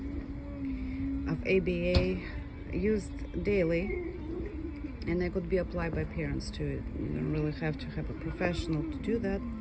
of ABA used daily, and they could be applied by parents too. You don't really have to have a professional to do that,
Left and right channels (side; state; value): both; identical; correlation 1.00